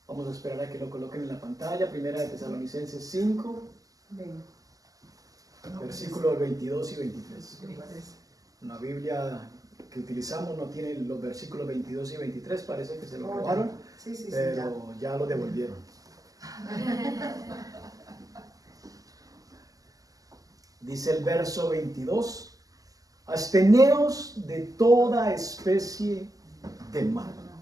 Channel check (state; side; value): late; left; 0.17 ms